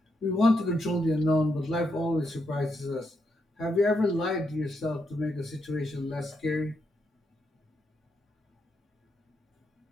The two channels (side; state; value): both; normal; correlation 0.80